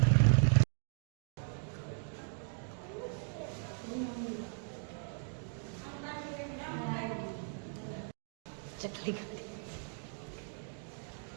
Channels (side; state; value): left; silent; 53 dB below the other